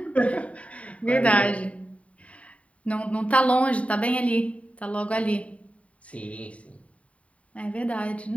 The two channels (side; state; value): right; late; 0.065 ms